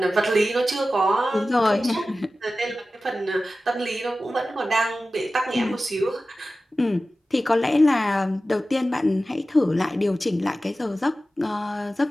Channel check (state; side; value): normal; both; correlation 0.95